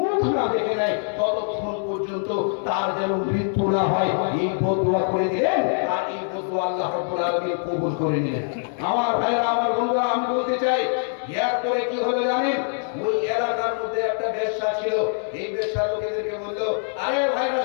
না দেখে নেয় ততক্ষণ পর্যন্ত তার যেন মৃত্যু না হয়, এই বদুয়া করে দিলেন। আর এই বদুয়া আল্লাহ রাব্বুল আলামিন কবুল করে নিলেন। আমার ভাইরা, আমার বন্ধুরা, আমি বলতে চাই, এরপরে কি হলো জানেন? ওই এলাকার মধ্যে একটা বেশ্যা ছিল। এই বেশ্যা লোকেদেরকে বললো, আরে ভাইরা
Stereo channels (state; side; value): silent; right; digital silence